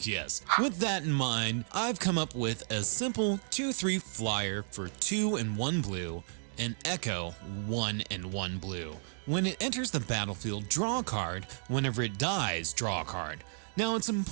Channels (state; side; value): silent; left; digital silence